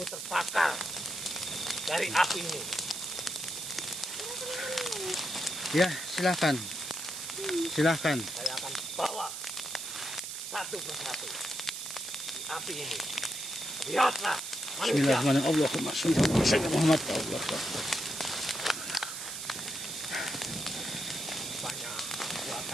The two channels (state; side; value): noise; right; hiss, 6 dB below the sound